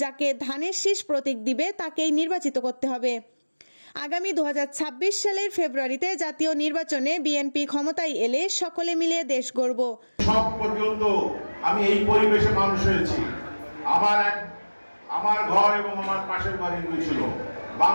যাকে ধানের শীষ প্রতীক দিবে তাকেই নির্বাচিত করতে হবে। আগামী ২০২৬ সালের ফেব্রুয়ারিতে জাতীয় নির্বাচনে বিএনপি ক্ষমতায় এলে সকলে মিলে দেশ গড়ব। সব পর্যন্ত আমি এই পরিবেশে মানুষ হয়েছি। আমার ঘর এবং আমার পাশের ঘর হিন্দু ছিল।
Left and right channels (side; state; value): both; inverted; correlation -1.00